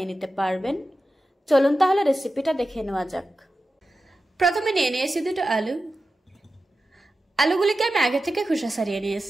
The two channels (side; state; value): both; normal; correlation 0.93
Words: নিতে পারবেন। চলুন তাহলে রেসিপিটা দেখে নেওয়া যাক। প্রথমে নিয়ে নিয়েছি দুটো আলু। আলুগুলিকে আমি আগে থেকে খোসা ছাড়িয়ে